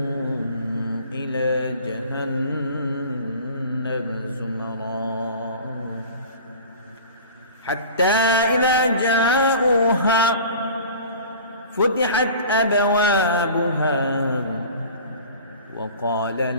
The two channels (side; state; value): both; inverted; correlation -0.41